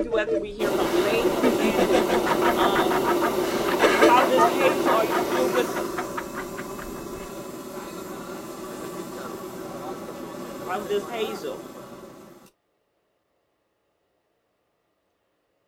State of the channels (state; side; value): identical; both; correlation 1.00